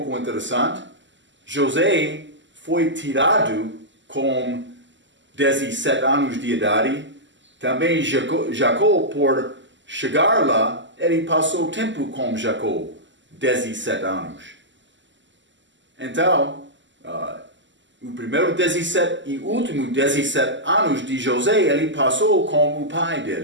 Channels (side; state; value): left; late; 0.54 ms